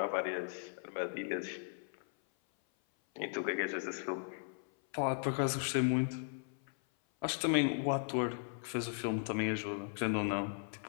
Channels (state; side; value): silent; right; 53 dB below the other